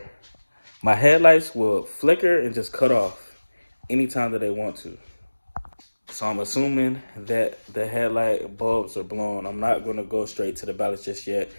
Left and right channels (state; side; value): inverted; both; correlation -1.00